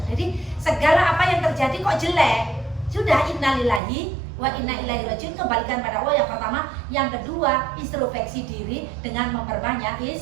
Jadi segala apa yang terjadi kok jelek, sudah innalillahi wa inna ilaihi rajiun, kembalikan pada Allah yang pertama, yang kedua introspeksi diri dengan memperbanyak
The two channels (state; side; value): drops out; left; at 3.8 s